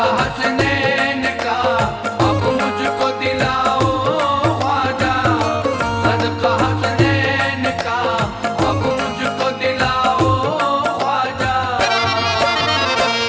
हसनैन का अब मुझको दिलाओ ख्वाजा। सदका हसनैन का अब मुझको दिलाओ ख्वाजा।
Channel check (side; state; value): both; identical; correlation 1.00